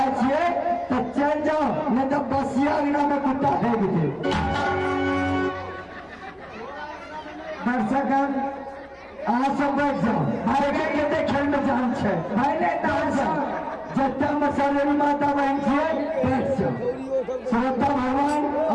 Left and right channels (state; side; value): identical; both; correlation 1.00